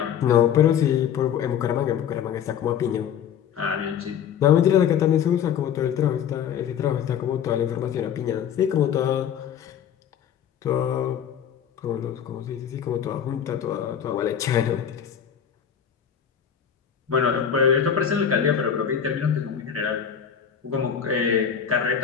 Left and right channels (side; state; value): right; quieter; 8.4 dB